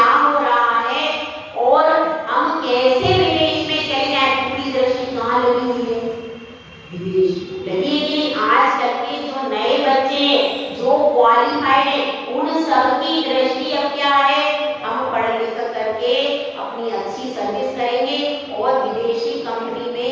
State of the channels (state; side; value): identical; both; correlation 1.00